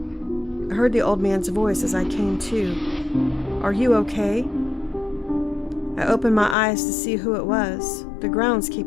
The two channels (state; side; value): drops out; right; at 6.6 s